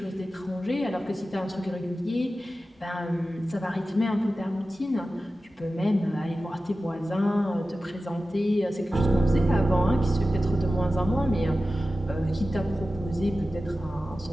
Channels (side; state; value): both; normal; correlation 0.95